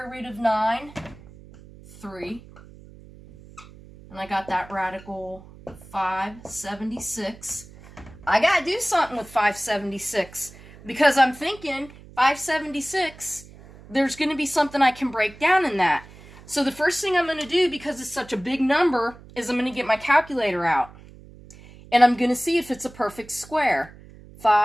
root of 9? 3. And I got that radical 576. I got to do something with 576 because I'm thinking 576, there's going to be something I can break down in that. So the first thing I'm going to do, because it's such a big number, is I'm going to get my calculator out. And I'm going to see if it's a perfect square.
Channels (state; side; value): noise; right; hum, 20 dB below the sound